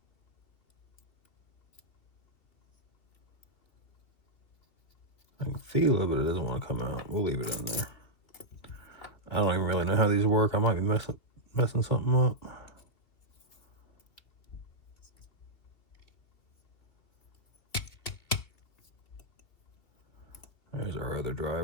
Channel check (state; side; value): late; right; 2.9 ms